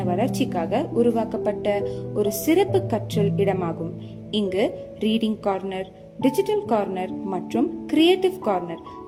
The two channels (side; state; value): both; identical; correlation 1.00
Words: வளர்ச்சிக்காக உருவாக்கப்பட்ட ஒரு சிறப்பு கற்றல் இடமாகும். இங்கு ரீடிங் கார்னர், டிஜிட்டல் கார்னர் மற்றும் கிரியேட்டிவ் கார்னர்